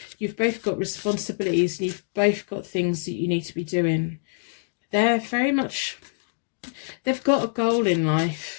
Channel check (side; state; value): right; silent; digital silence